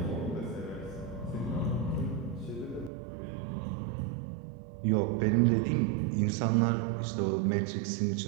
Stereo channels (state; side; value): drops out; left; at 2.9 s